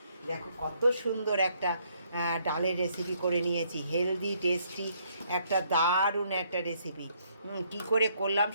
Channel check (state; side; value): inverted; both; correlation -0.69